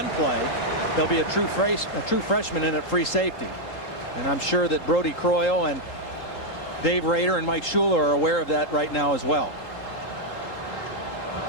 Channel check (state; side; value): late; right; 3.8 ms